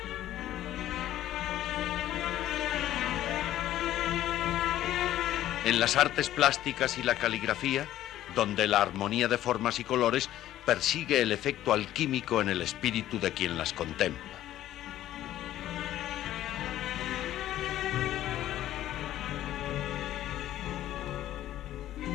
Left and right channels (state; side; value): quieter; right; 13.2 dB